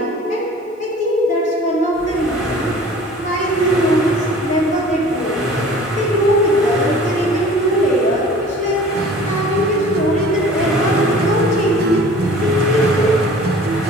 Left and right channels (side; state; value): both; normal; correlation 0.46